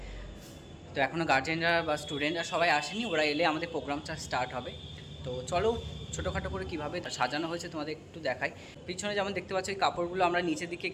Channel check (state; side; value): identical; both; correlation 1.00